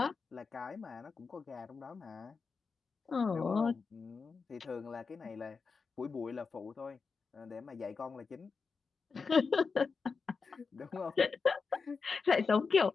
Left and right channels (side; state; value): right; quieter; 4.9 dB